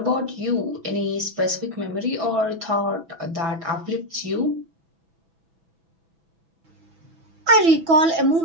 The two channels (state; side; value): late; left; 6.1 ms